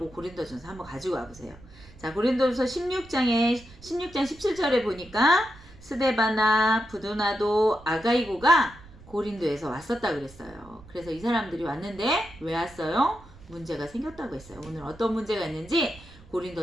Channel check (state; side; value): noise; right; rumble, 21 dB below the sound